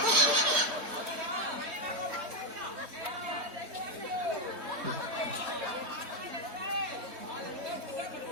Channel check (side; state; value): left; late; 3.1 ms